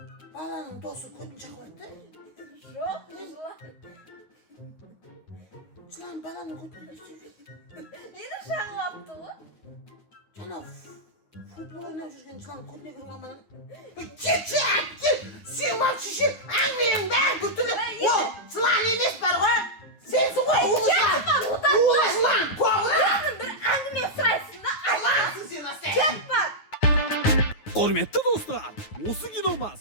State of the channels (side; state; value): right; late; 9.5 ms